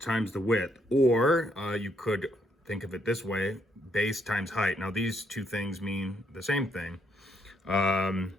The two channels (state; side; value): normal; both; correlation 0.74